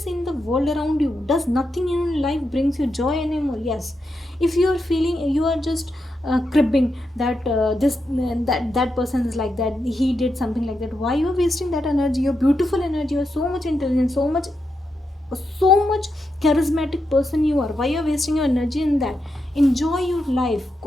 in the world around you? Does nothing in life brings you joy anymore? Yes. If you are feeling, you are just cribbing that that person is like that, he did something like that, why you are wasting that energy? You're beautiful energy, you're so much intelligent, so much charismatic person you are. Why you're wasting your energy in that? Enjoy your life.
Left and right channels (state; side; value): normal; both; correlation 0.85